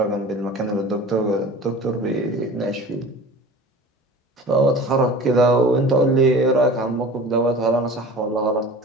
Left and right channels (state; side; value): normal; both; correlation 0.40